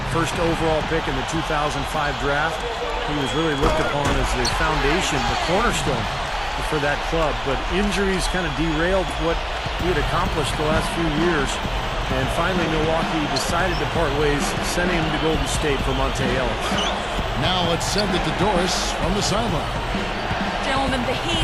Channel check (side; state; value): both; identical; correlation 1.00